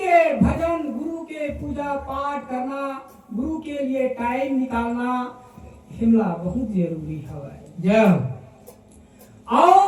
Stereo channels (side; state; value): both; identical; correlation 1.00